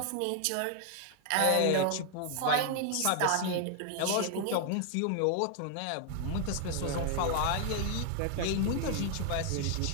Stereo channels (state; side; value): different; both; correlation 0.00